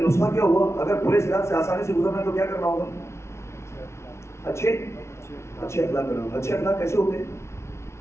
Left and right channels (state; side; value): late; right; 0.13 ms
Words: نسخہ کیا ہوا, اگر پلے صراط سے آسانی سے گزرنا ہے تو کیا کرنا ہوگا؟ اچھے اخلاق کرنا ہوگا. اچھے اخلاق کیسے ہوتے ہیں,